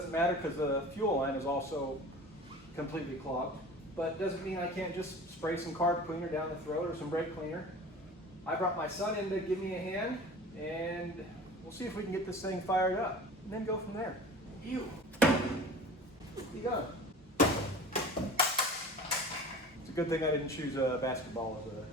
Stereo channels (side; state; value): both; normal; correlation 0.39